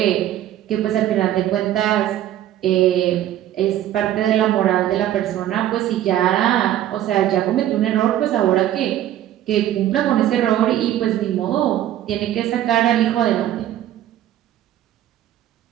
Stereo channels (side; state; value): left; quieter; 12.3 dB